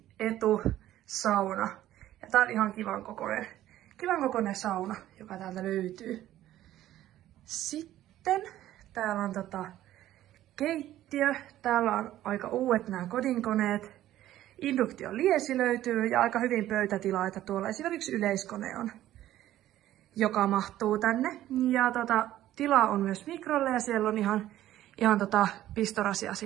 etu sauna. Ja tää on ihan kivan kokoinen sauna, joka täältä löytyy. Sitten täällä on keittiö. Täällä on aika uudet nämä kodinkoneet. Induktioliesi löytyy ja aika hyvin pöytätilaa, että tuolla esimerkiksi yleiskone on, joka mahtuu tänne. Ja tilaa on myös mikrolle ja siellä on ihan pistorasia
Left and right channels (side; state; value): left; quieter; 13.5 dB